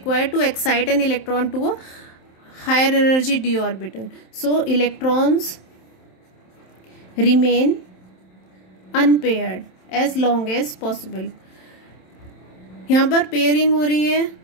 to excite an electron to a higher energy d orbital. So electrons remain unpaired as long as possible. यहाँ पर pairing हो रही है,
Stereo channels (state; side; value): late; right; 27 ms